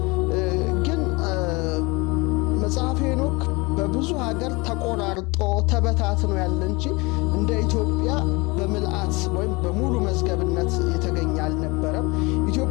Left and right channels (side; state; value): right; quieter; 25.7 dB